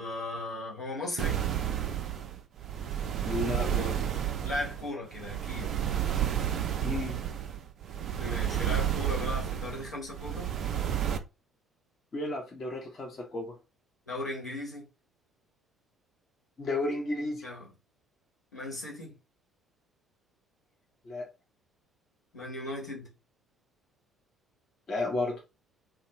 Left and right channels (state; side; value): quieter; left; 4.2 dB